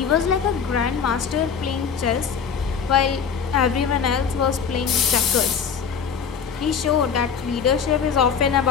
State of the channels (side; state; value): right; quieter; 6.7 dB